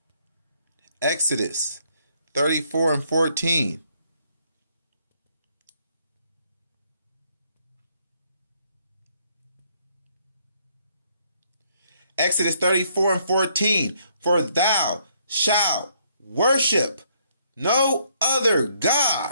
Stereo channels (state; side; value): inverted; both; correlation -0.69